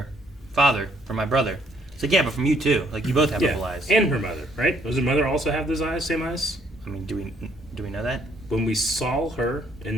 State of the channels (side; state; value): both; normal; correlation 0.67